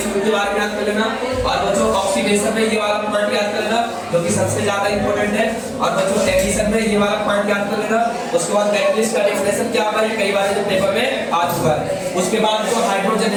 फ्यूल के बारे में याद कर लेना। और बच्चों ऑक्सीडेशन में ये वाला पॉइंट याद कर लेना जो कि सबसे ज्यादा इंपॉर्टेंट है। और बच्चों एडिशन में ये वाला पॉइंट याद कर लेना। उसके बाद कैटलिस्ट का डेफिनेशन क्या होता है, कई बार जो पेपर में आ चुका है। उसके बाद जो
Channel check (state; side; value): identical; both; correlation 1.00